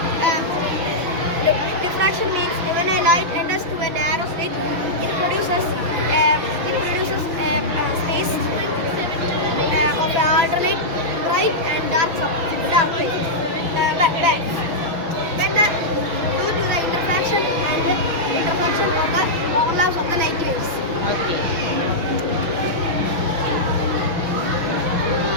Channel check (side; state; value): left; late; 6.1 ms